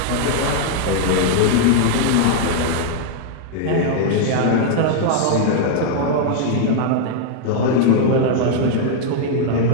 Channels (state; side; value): different; both; correlation 0.00